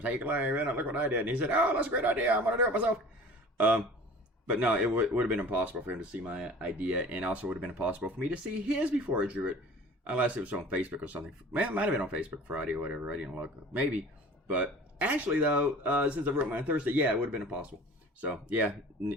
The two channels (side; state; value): both; normal; correlation 0.43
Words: Clay, look what I did. And he said, "Oh, that's a great idea. I'm gonna do it myself." But no, it would have been impossible for him to see my idea, and also would have been impossible for me to see his before I drew it, unless it was on Facebook or something. Man, it might have been on Facebook Friday or whatever. I didn't look. Maybe, but actually though, since I wrote mine on Thursday, yeah, it would have been impossible. So yeah,